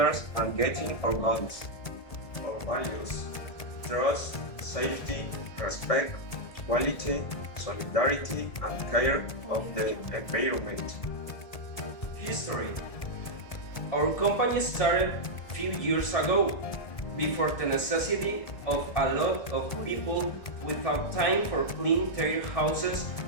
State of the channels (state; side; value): late; right; 1.6 ms